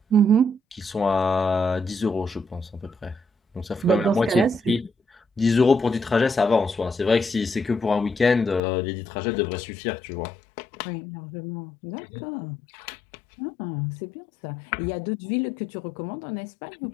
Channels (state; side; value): drops out; right; at 8.6 s